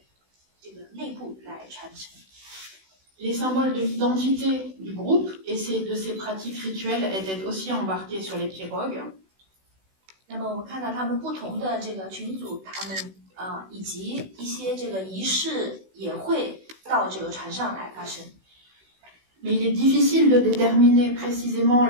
这个内部来传承。Les symboles de l'identité du groupe et de ces pratiques rituelles étaient aussi embarqués sur les pirogues. 那么我们看到他们不同的这个群组，他们以及一些这个仪式也会到这个船上来发生。Mais il est difficile de déterminer précisément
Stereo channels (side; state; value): left; late; 16 ms